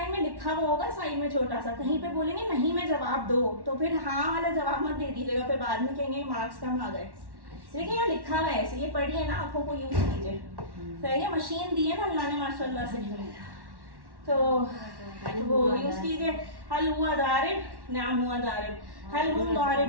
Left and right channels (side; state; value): left; late; 1.1 ms